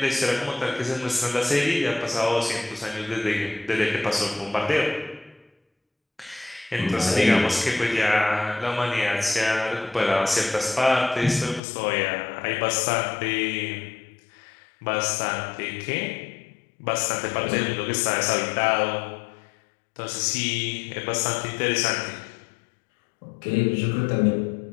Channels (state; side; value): drops out; right; at 11.6 s